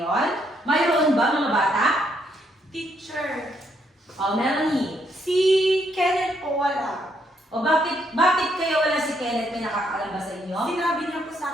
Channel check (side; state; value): both; normal; correlation 0.73